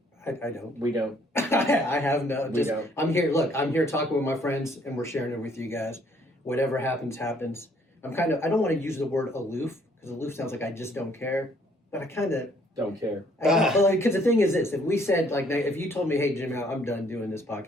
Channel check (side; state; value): both; normal; correlation 0.64